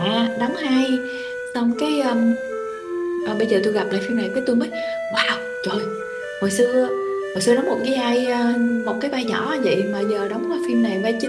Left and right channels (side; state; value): both; identical; correlation 1.00